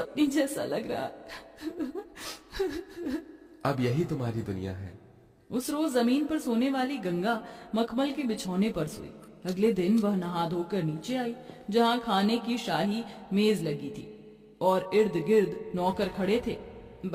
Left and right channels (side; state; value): both; identical; correlation 1.00